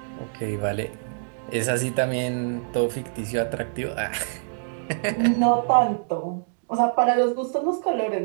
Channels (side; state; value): left; silent; digital silence